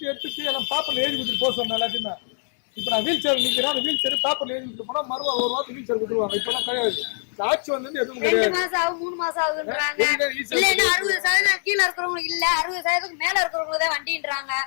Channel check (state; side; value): silent; right; 63 dB below the other